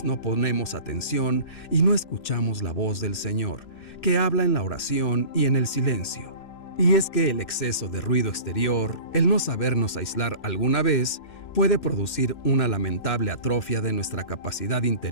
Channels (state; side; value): late; right; 3.0 ms